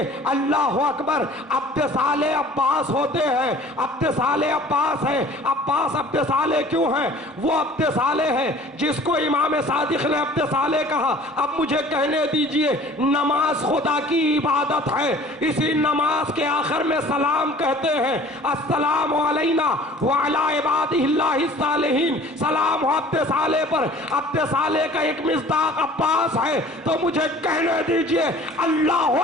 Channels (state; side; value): normal; both; correlation 0.48